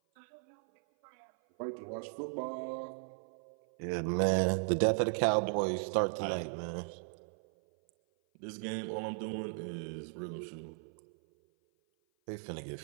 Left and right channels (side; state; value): left; silent; 54 dB below the other